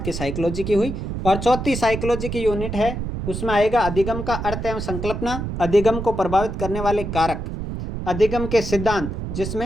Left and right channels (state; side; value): noise; right; rumble, 5 dB below the sound